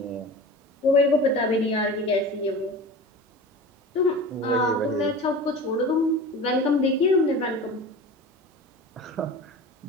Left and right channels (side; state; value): both; normal; correlation 0.34